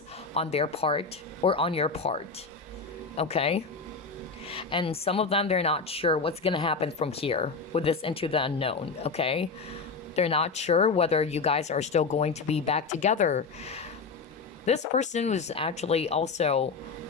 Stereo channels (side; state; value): right; quieter; 4.6 dB